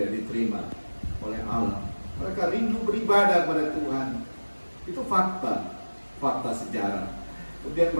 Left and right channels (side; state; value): both; inverted; correlation -1.00